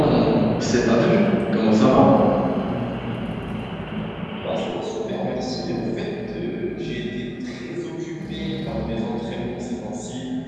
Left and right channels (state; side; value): identical; both; correlation 1.00